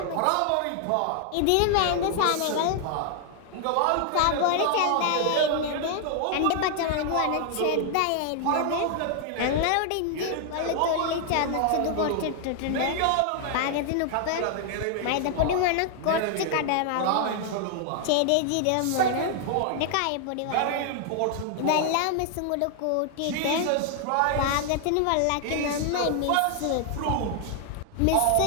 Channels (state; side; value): different; both; correlation 0.00